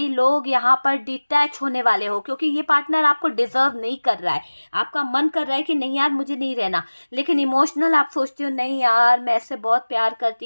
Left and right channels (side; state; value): both; inverted; correlation -1.00